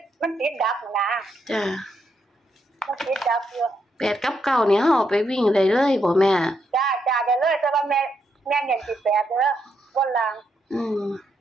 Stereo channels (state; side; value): normal; both; correlation 0.79